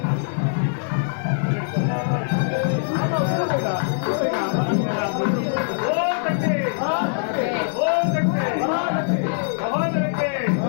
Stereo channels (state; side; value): silent; right; digital silence